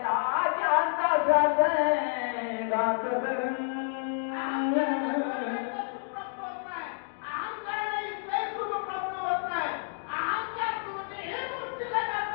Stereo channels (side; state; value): right; silent; digital silence